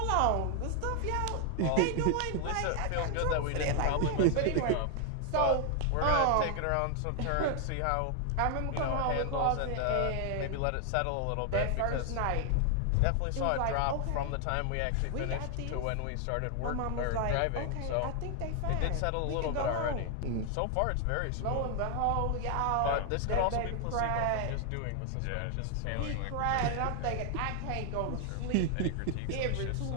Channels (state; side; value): different; both; correlation 0.00